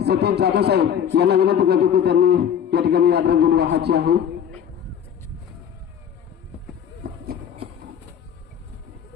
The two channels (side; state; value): right; quieter; 8.7 dB